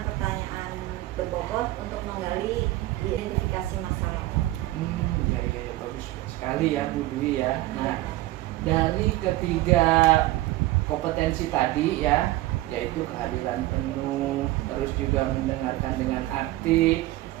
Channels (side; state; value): left; quieter; 17.3 dB